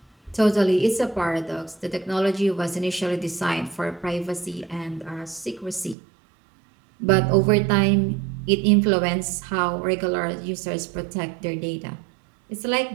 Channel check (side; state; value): left; drops out; at 6.0 s